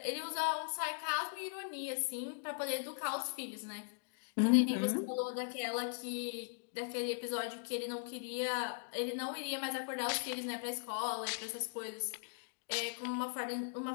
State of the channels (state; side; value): silent; right; digital silence